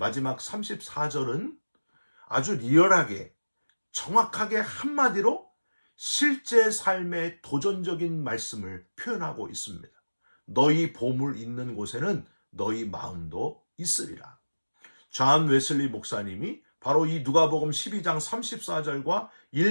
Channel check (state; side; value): inverted; both; correlation -1.00